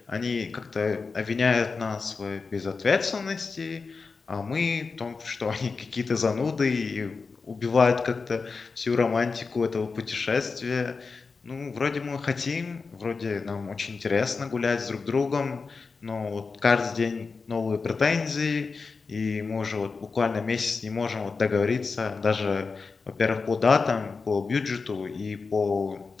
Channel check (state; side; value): quieter; right; 4.6 dB